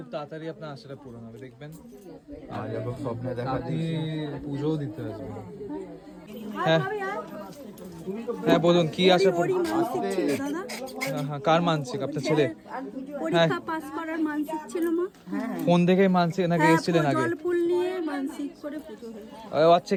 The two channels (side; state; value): both; identical; correlation 1.00